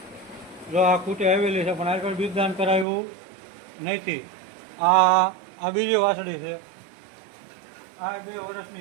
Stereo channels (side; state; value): left; drops out; at 2.9 s